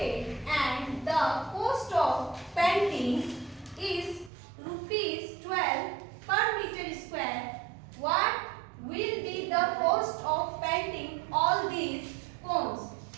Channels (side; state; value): left; drops out; at 4.3 s